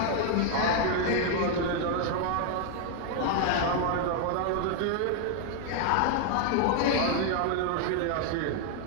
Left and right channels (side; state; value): both; different; correlation 0.00